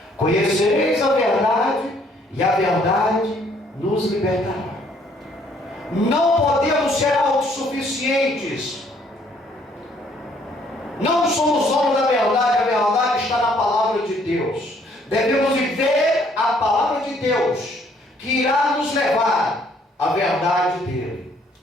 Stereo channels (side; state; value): both; normal; correlation 0.64